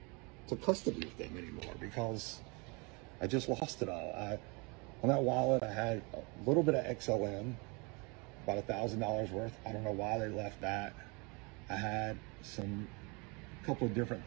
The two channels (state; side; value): quieter; left; 29.7 dB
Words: to custody with them anymore because I just lost it all. On that wallet, I had a little bit of XLM, about $1,000 worth. I don't know why they left that. I had a couple of different